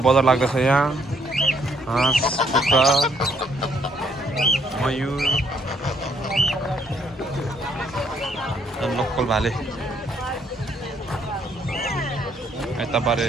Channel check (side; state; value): both; normal; correlation 0.68